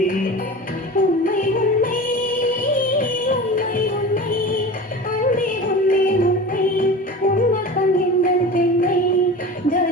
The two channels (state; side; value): normal; both; correlation 0.34